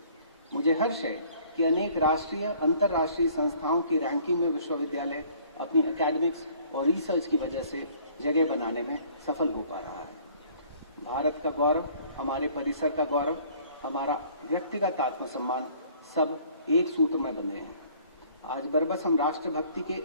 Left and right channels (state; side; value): inverted; both; correlation -0.56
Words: मुझे हर्ष है कि अनेक राष्ट्रीय, अंतर्राष्ट्रीय संस्थाओं की रैंकिंग में विश्वविद्यालय अपनी एकेडमिक्स और रिसर्च की वजह से जगह बनाने में सफल हो पा रहा है। भारत का गौरव, हमारे परिसर का गौरव, हमारा व्यक्तिगत आत्मसम्मान सब एक सूत्र में बंधे हैं। आज बरबस हम राष्ट्रभक्ति के